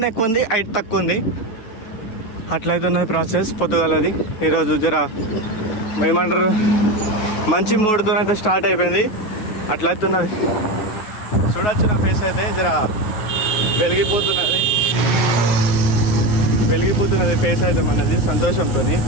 ఎక్కువ ఉంది, హైట్ తక్కువ ఉంది. అట్లయితే ఉన్నది ప్రాసెస్ పొద్దుగాలది. ఈరోజు జర ఏమంటారు మంచి మూడ్తో అయితే స్టార్ట్ అయిపోయింది. అట్లయితే ఉన్నది. చూడొచ్చు నా ఫేస్ అయితే జర వెలిగిపోతున్నది ఫేస్ అయితే మనది సంతోషంతో.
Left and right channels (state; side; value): late; right; 9.4 ms